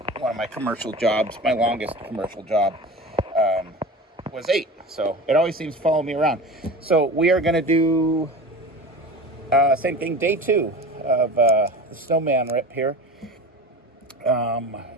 one of my commercial jobs. My longest commercial job was 8, so it always seems to follow me around. So we are going to do same thing, day 2 of the snowman rip here.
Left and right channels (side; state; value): both; normal; correlation 0.33